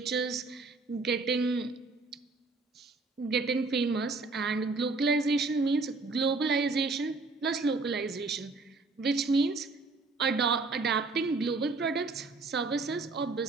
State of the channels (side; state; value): left; quieter; 3.8 dB